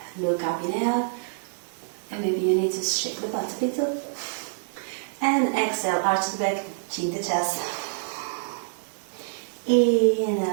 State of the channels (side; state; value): left; silent; digital silence